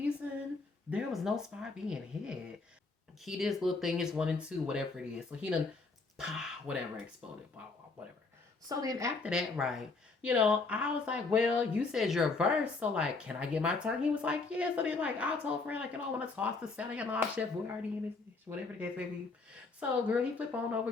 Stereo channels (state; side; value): quieter; right; 3.9 dB